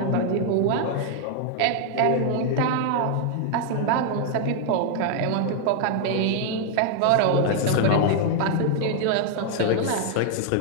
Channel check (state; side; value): different; both; correlation 0.00